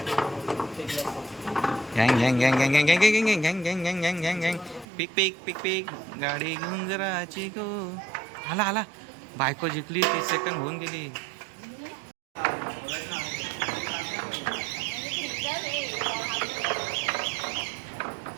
गँग. पिक गाडी घेऊन जराची गो. आला बायको जिंकली. 30 सेकंड होऊन गेली.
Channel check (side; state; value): left; drops out; at 4.9 s